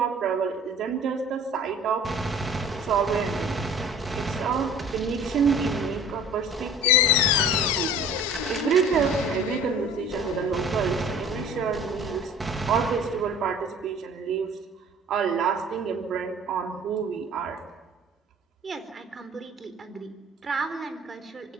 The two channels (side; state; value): both; normal; correlation 0.46